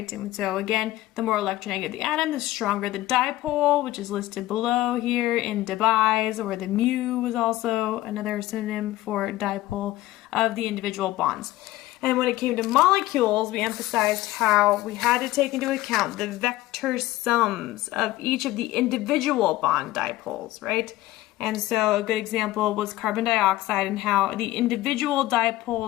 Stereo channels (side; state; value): right; quieter; 16.6 dB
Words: And so again, the more electronegative the atom, the stronger the dipole, which is listed below here in Debye's, or the mu was also another synonym for dipole of the individual bonds. And when it came to molecules, we emphasized how we had to take into account the vector sums of each of the individual bond dipoles, right? And so a good example was carbon dioxide and how the individual